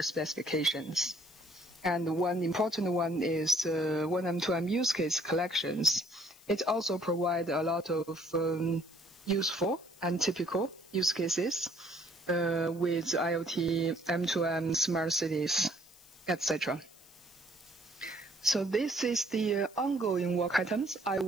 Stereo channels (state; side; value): noise; left; hiss, 24 dB below the sound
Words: specifications. And one important one is 1M2M use case collections. It also provides a lot of useful and typical use cases with IoT, M2M, smart cities, etc. So this is the ongoing work items I